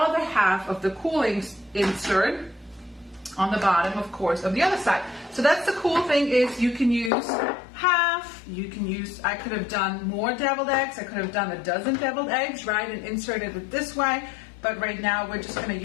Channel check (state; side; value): drops out; right; at 7.1 s